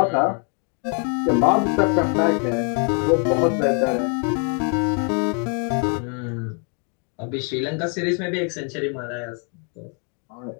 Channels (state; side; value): quieter; right; 39.6 dB